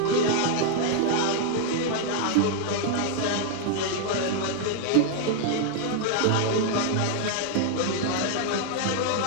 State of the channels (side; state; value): both; different; correlation 0.00